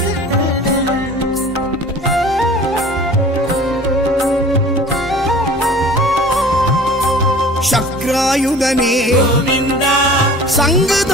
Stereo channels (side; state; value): both; normal; correlation 0.44